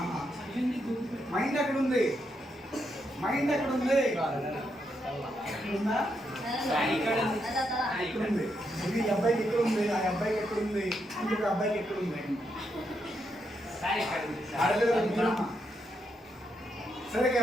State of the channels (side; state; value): both; normal; correlation 0.80